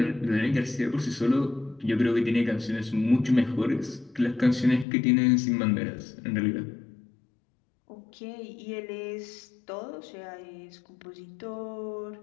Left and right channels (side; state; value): right; drops out; at 4.9 s